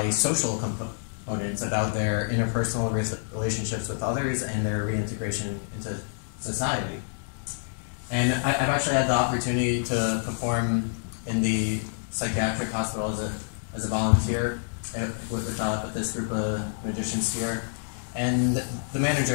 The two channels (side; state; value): right; silent; digital silence